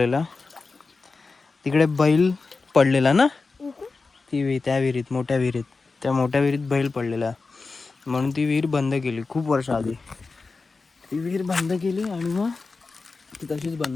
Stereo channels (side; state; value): right; quieter; 4.1 dB